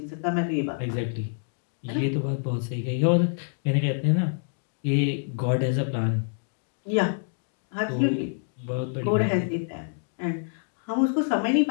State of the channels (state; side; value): silent; right; digital silence